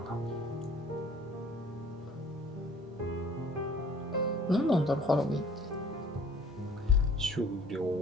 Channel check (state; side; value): normal; both; correlation 0.52